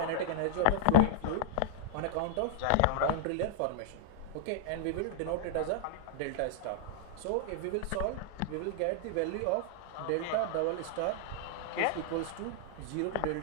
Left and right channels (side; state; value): both; different; correlation -0.01